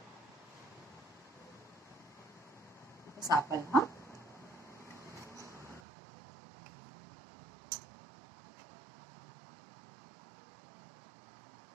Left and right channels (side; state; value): left; drops out; at 5.8 s